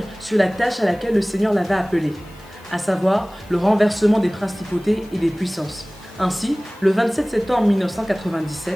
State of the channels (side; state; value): left; noise; hiss, 28 dB below the sound